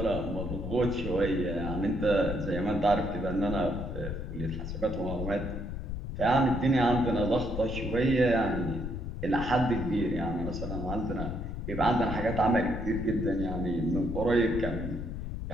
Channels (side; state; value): left; noise; rumble, 5 dB below the sound